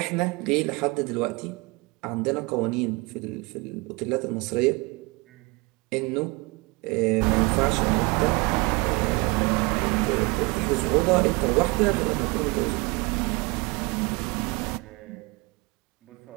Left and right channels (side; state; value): left; quieter; 26.9 dB